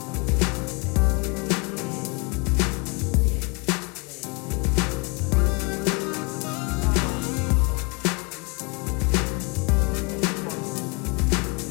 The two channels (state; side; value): quieter; right; 30.4 dB